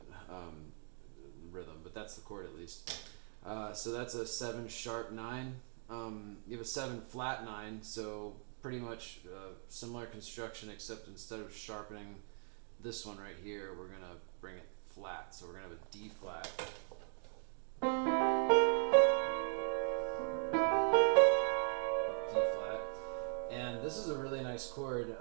rhythm. But that's the chord at least. So that's a 7 sharp 9. You have a 7 flat 9, so pretty much similar construction, except instead of sharpening this one right here, we're gonna bring it flat. So we're gonna have a D flat. D flat. And this is a really nice chord.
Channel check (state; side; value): silent; left; 51 dB below the other